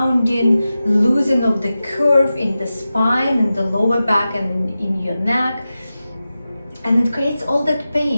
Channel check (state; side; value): inverted; both; correlation -0.93